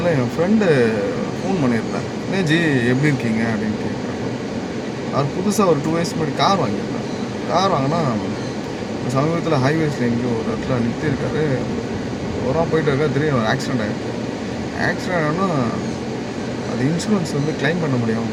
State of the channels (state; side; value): identical; both; correlation 1.00